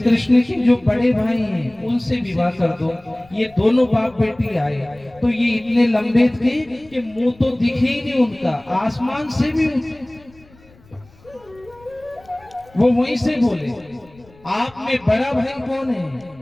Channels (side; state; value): left; noise; rumble, 27 dB below the sound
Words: के जो बड़े भाई हैं उनसे विवाह कर दो। ये दोनों बाप बेटी आए तो ये इतने लंबे थे कि मुंह तो दिखे ही नहीं उनका, आसमान से भी वो वहीं से बोले, आप में बड़ा भाई कौन है,